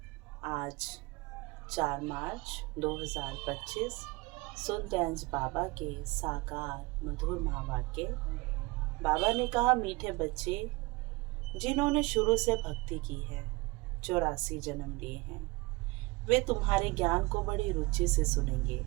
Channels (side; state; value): left; quieter; 23.9 dB